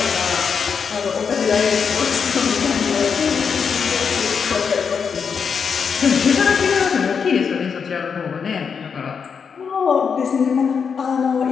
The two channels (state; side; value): quieter; right; 6.3 dB